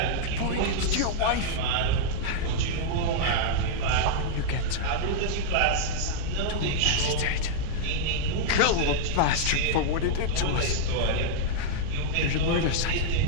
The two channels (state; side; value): different; both; correlation -0.02